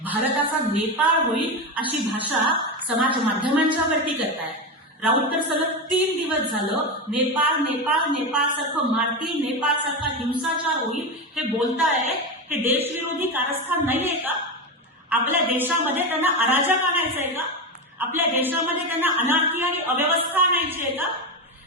भारताचा नेपाळ होईल अशी भाषा समाज माध्यमांच्या वरती करतायत. राऊत तर सलग 3 दिवस झालं नेपाळ नेपाळ नेपाळ सारखं मारतील, नेपाळ सारखा हिंसाचार होईल हे बोलताय. हे देशविरोधी कारस्थान नाहीये का? आपल्या देशामध्ये त्यांना अराजक आणायचंय का? आपल्या देशामध्ये त्यांना अनार्की आणि अव्यवस्था आणायची आहे का?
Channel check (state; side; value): normal; both; correlation 0.16